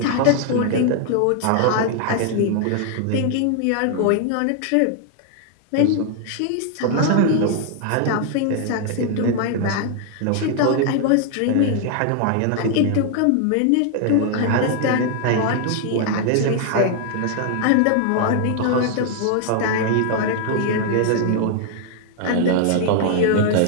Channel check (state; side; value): different; both; correlation 0.00